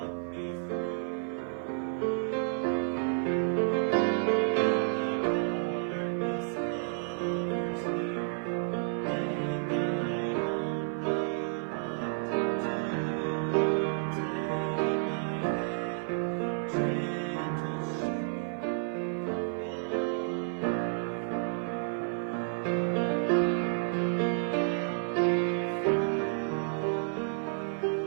me through. When the darkness hovers near and I don't know what to do, take my hand, gentle shepherd, walk me through. Walk me through.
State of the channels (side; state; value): left; silent; 55 dB below the other